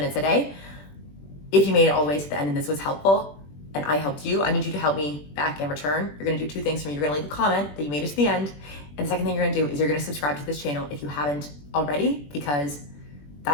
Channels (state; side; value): late; right; 21 ms